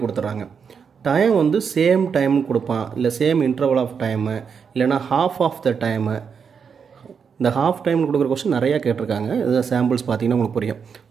கொடுத்துட்றாங்க. டைம் வந்து சேம் டைம்னு கொடுப்பான், இல்லை சேம் இன்டர்வல் ஆஃப் டைமு, இல்லைனா ஹாஃப் ஆஃப் த டைமு. இந்த ஹாஃப் டைம்னு கொடுக்குற கொஸ்டின் நிறையா கேட்டிருக்காங்க. இது சாம்பிள்ஸ் பார்த்தீங்கன்னா உங்களுக்கு புரியும்.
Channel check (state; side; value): quieter; left; 6.4 dB